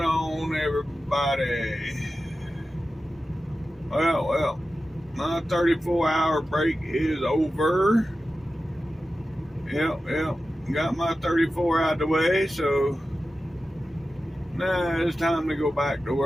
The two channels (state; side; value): normal; both; correlation 0.93